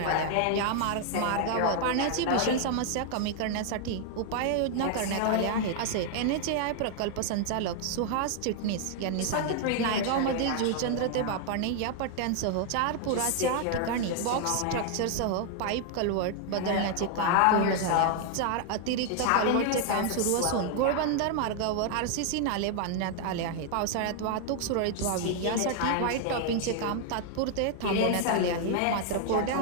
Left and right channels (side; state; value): both; different; correlation 0.00